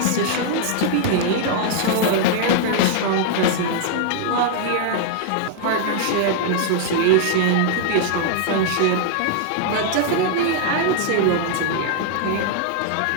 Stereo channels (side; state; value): both; different; correlation -0.01